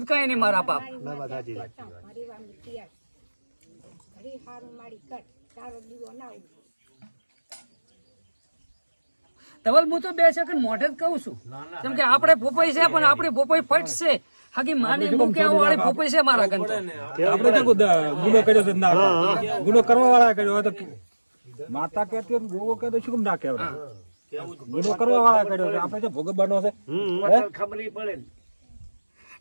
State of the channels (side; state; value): both; inverted; correlation -1.00